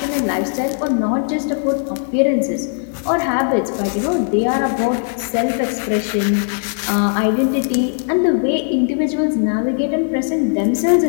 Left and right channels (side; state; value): right; silent; digital silence